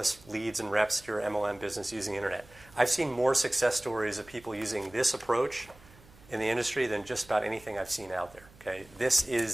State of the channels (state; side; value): noise; right; hum, 24 dB below the sound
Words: leads and reps to your MLM business using the internet. I've seen more success stories of people using this approach in the industry than just about anything I've seen out there. Okay, this